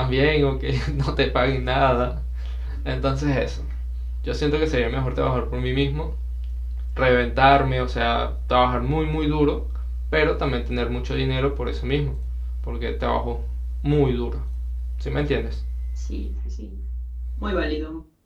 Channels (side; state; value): both; identical; correlation 1.00